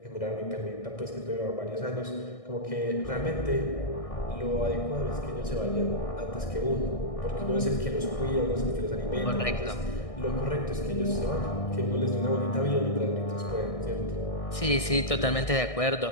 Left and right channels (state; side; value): late; right; 1.6 ms